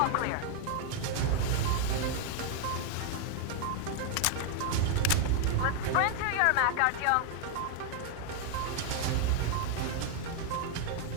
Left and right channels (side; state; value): both; different; correlation 0.00